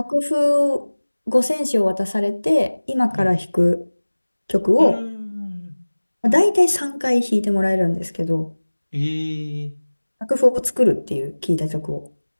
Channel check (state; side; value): inverted; both; correlation -1.00